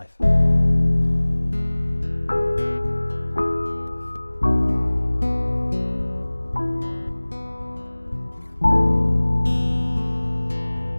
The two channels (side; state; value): both; inverted; correlation -1.00